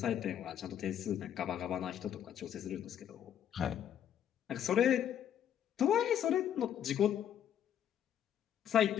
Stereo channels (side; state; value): right; quieter; 9.9 dB